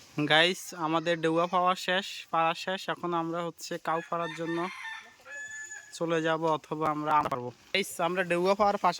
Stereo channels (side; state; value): both; identical; correlation 1.00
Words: গাইস। আমাদের ঢেউয়া পাড়া শেষ। এখন আমরা হচ্ছে কাউ ফাড়ার জন্য চলে যাব, অথবা আমরা পারবো গাইস। আমরা ঢেউয়া পাওয়ার